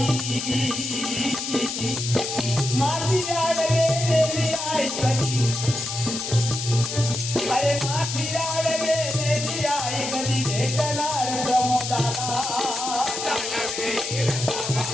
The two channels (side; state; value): left; noise; hiss, 5 dB below the sound